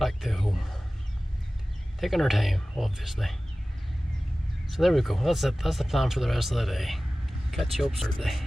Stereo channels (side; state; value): both; normal; correlation 0.97